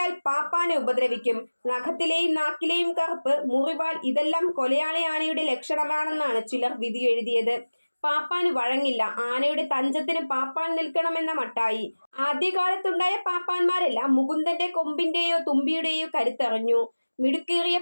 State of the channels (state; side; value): inverted; both; correlation -1.00